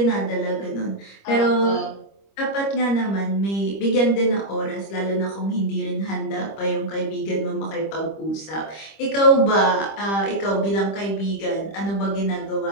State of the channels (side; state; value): right; late; 25 ms